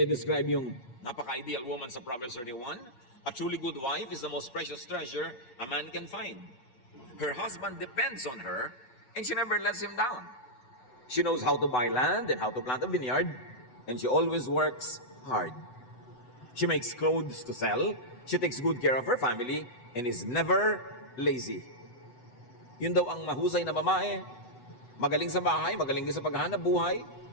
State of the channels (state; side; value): late; right; 8.1 ms